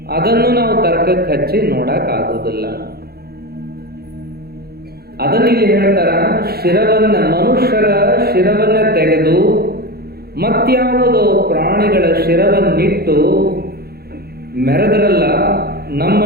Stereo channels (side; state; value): left; late; 0.46 ms